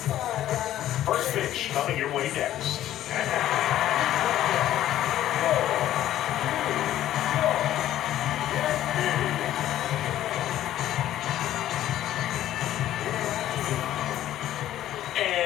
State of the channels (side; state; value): right; quieter; 12.8 dB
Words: First pitch coming your way next.